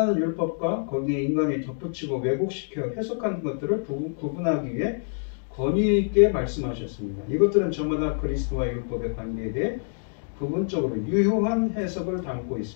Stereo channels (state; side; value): silent; right; digital silence